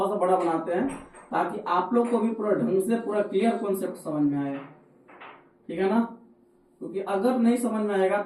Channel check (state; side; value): identical; both; correlation 1.00